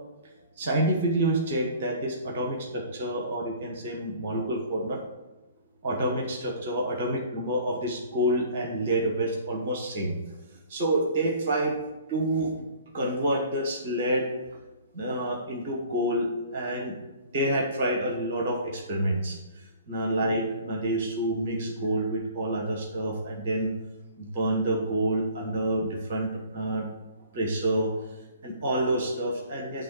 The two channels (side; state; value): both; inverted; correlation -0.51